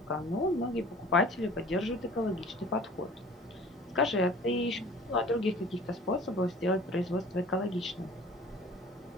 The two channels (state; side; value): normal; both; correlation 0.46